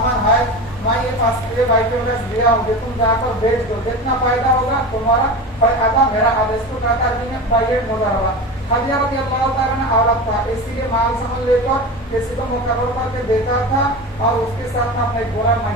ہے میں یہ بھائی کے دیا ہوں تم جا کر بیچ دو جتنا فائدہ ہوگا تمہارا فائدہ میرا آدیش کو کہتا ہے عربی میں بیع مضاربہ. خدیجہ رضی اللہ تعالیٰ نے عورت تھا اس لیے مال سامان لے کر کسی کو مقرر کر کے دیتا تھا اور اس کے ساتھ میں اپنے غلام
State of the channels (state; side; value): normal; both; correlation 0.27